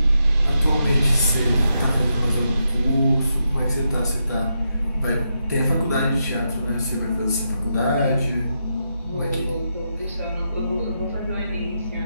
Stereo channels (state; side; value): inverted; both; correlation -0.83